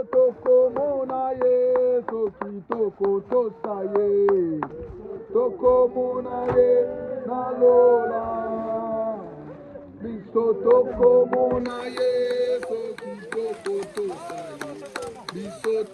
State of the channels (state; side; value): identical; both; correlation 1.00